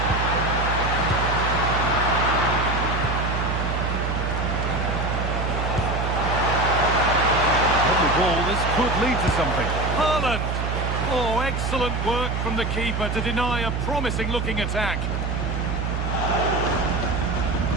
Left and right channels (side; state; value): right; noise; hum, 1 dB below the sound